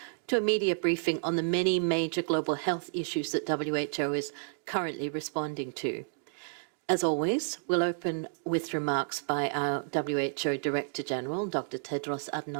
to a media briefing on the many major global health issues that WHO is currently responding to. As always, we'll open with remarks by our WHO Director General, Dr. Tedros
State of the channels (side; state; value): left; silent; digital silence